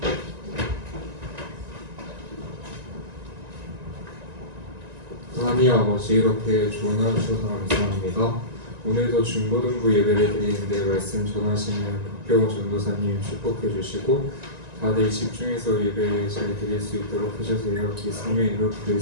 하나님 아버지, 이렇게 좋은 하루 주셔서 감사합니다. 오늘도 중고등부 예배를 드리는데 말씀 전하시는 박경호 전도사님 축복해 주시고 다들 집중해서 예배 잘 드릴 수 있도록 해주세요. 예수님의 이름으로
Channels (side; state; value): left; late; 1.9 ms